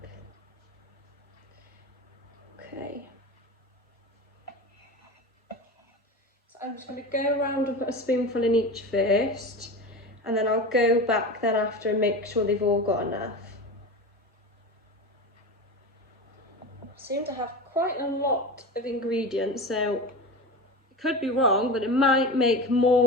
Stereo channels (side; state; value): both; normal; correlation 0.27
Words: I'm just going to go around and put a spoonful in each first, and then I'll go back then after and make sure they've all got enough. I seem to have quite a lot of ingredients, so it could be wrong, but it might make